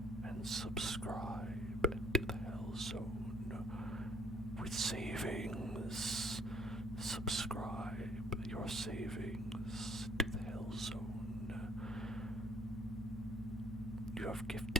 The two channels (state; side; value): normal; both; correlation 0.61